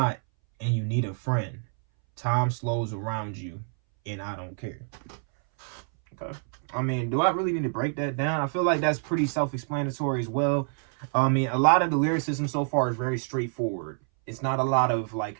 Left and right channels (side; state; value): left; silent; 60 dB below the other